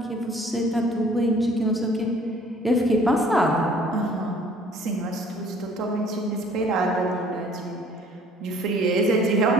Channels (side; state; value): both; normal; correlation 0.55